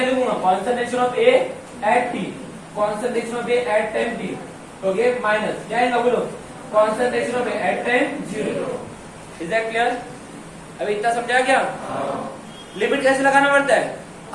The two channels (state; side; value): identical; both; correlation 1.00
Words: लिखूंगा, concentration of A at T, concentration of A at time T, okay, minus क्या है बोलो, concentration of A at time 0, is that clear? अभी इतना समझा क्या? लिमिट कैसे लगाना पड़ता है,